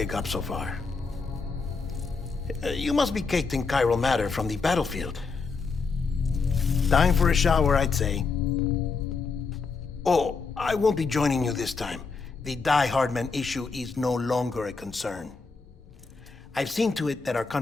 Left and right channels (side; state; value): right; quieter; 4.6 dB